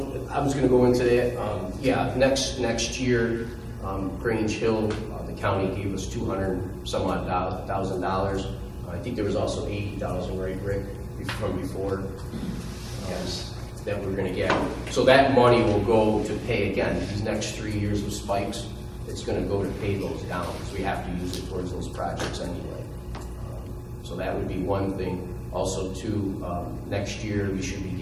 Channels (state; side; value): identical; both; correlation 1.00